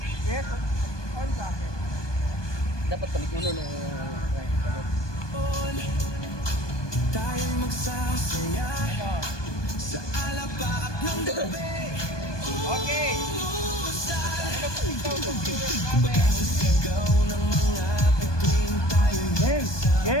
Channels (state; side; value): late; right; 1.2 ms